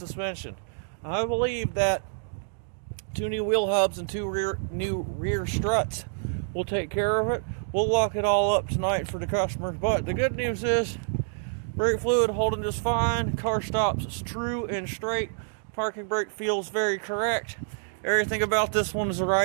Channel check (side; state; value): left; silent; digital silence